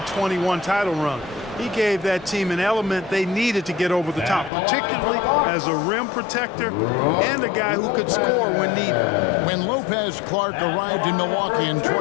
title run. He gave that team an element they needed to get over the top, particularly as a rim protector and a guy who could score when needed. When Lopez Clark arrived in Milwaukee in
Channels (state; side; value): drops out; right; at 4.5 s